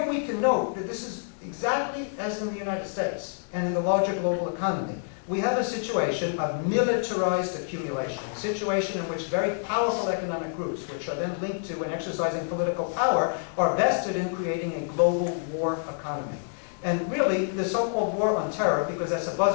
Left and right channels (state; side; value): silent; right; digital silence